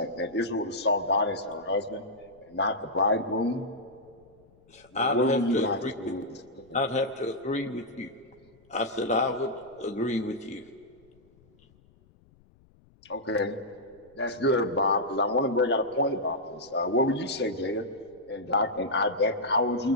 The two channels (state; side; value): noise; left; rumble, 30 dB below the sound